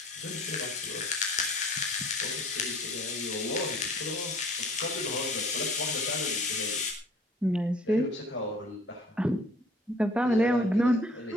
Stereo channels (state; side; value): normal; both; correlation 0.52